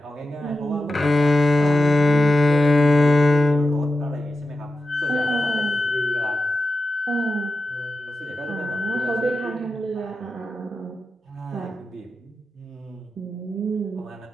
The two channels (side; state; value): both; normal; correlation 0.91